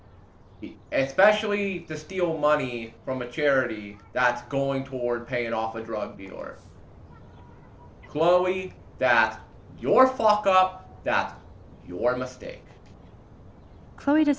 Especially to steal money from a charity that's going toward paying off a drug dealer. Chloe, that's your fuck up. That's your mistake. Chloe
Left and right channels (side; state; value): both; identical; correlation 1.00